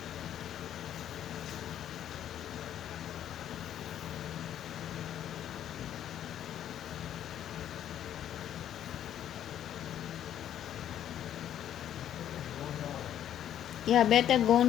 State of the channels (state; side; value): quieter; right; 10.7 dB